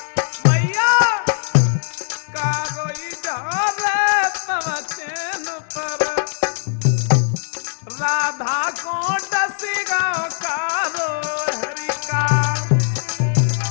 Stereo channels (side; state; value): right; silent; digital silence